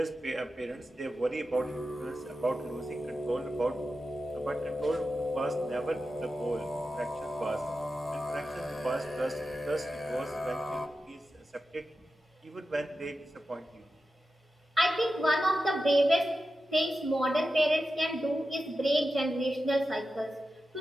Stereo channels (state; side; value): normal; both; correlation 0.91